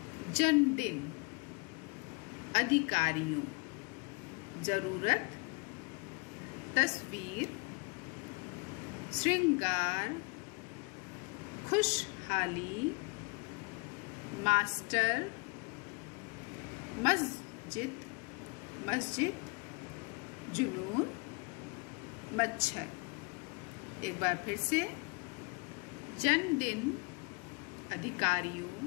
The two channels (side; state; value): right; quieter; 30.7 dB